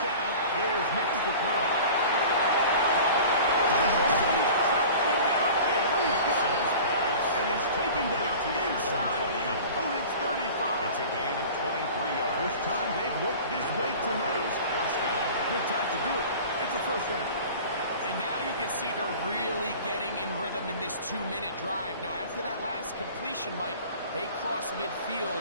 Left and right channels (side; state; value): both; inverted; correlation -0.40